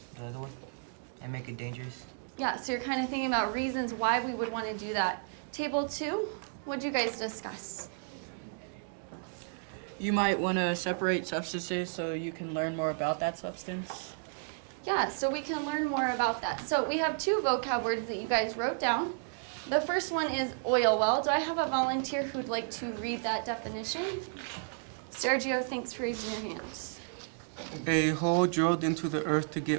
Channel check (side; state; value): left; silent; digital silence